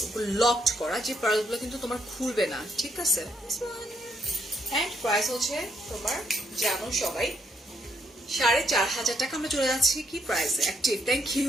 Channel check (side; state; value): both; normal; correlation 0.75